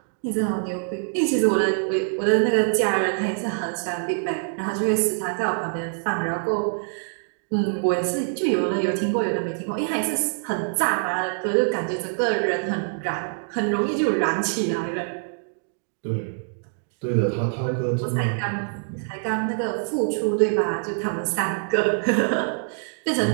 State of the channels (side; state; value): left; silent; digital silence